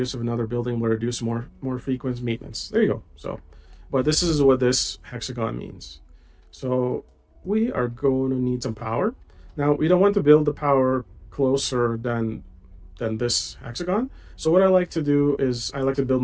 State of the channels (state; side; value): identical; both; correlation 1.00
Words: of another building will reduce more frequent maintenance. There you go. So, but this is what this hexagon means. So we are going to need some power. Now we don't want to build the power closer than this hexagon. So what I like to do is I like to build